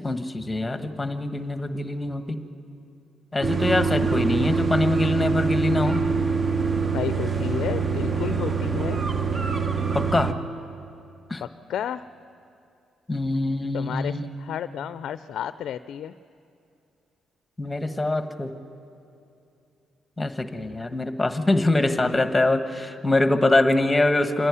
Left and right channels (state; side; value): normal; both; correlation 0.85